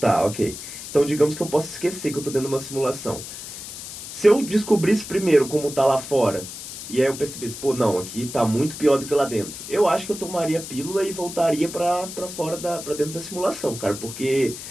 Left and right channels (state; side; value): noise; left; hiss, 10 dB below the sound